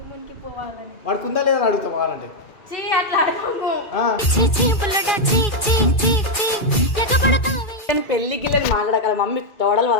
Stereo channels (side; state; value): right; late; 2.4 ms